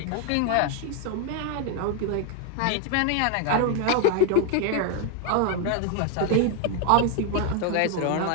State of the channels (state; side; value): different; both; correlation 0.01